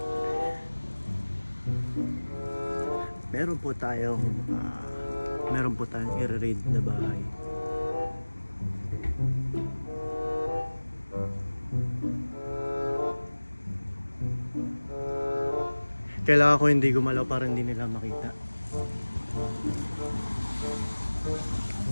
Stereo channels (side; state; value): both; inverted; correlation -1.00